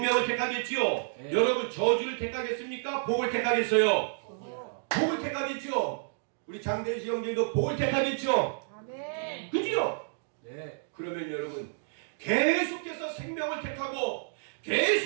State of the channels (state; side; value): silent; left; digital silence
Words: 택하겠지요. 여러분 저주를 택하겠습니까? 복을 택하겠어요? 복을 택하겠죠. 우리 장대시 형제도 복을 택하겠죠. 그지요? 그러면 여러분 계속해서 생명을 택하고